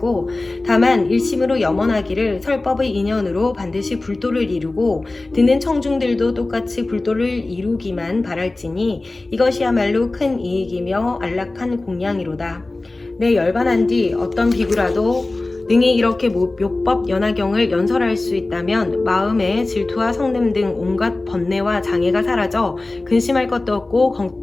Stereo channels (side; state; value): right; quieter; 3.0 dB